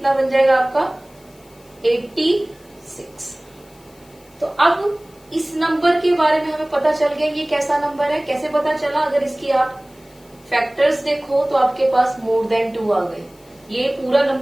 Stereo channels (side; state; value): left; noise; hiss, 29 dB below the sound